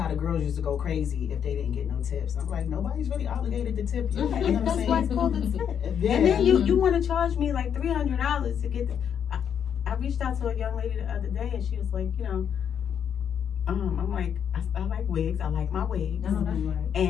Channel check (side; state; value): right; quieter; 8.3 dB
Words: the girls used to go crazy if they didn't get no tips. I'm like, nobody's really obligated to tip you. Yeah, You know what I'm that's saying? why it's called a tip. Yeah. And then you want to charge me like $300 to get the. I reached out to a young lady the other day and she was like, I'm like, I like wigs. I like my wigs. No, that's right.